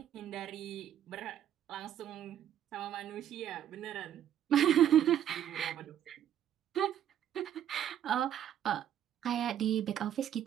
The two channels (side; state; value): left; quieter; 10.4 dB